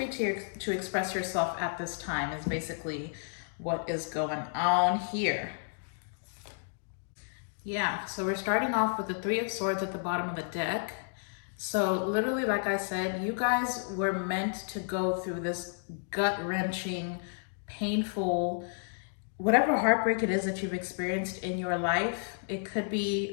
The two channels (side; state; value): right; silent; digital silence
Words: to express yourself at this time is basically what is going on here. Yeah, so we're starting off with the Three of Swords at the bottom of the deck. So literally, like I said, you guys were meant to go through this gut-wrenching, painful, whatever heartbreak it is that you've experienced in your life. It could